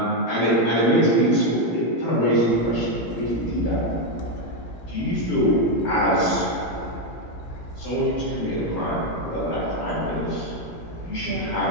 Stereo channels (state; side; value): late; right; 17 ms